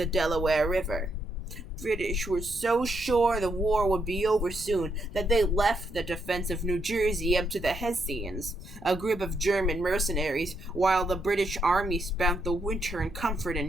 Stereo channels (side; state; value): left; noise; rumble, 17 dB below the sound